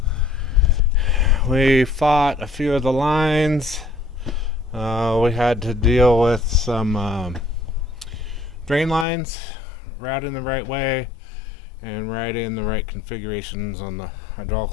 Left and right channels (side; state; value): right; drops out; at 9.1 s